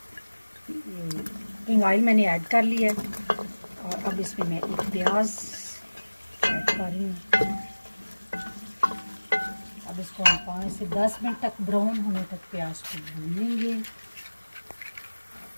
किंग ऑयल मैंने ऐड कर लिया है और अब इसमें मैं एक प्याज ऐड कर रही हूँ। अब इसको हम 5 से 10 मिनट तक ब्राउन होने तक प्याज को भूनेंगे।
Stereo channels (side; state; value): both; inverted; correlation -1.00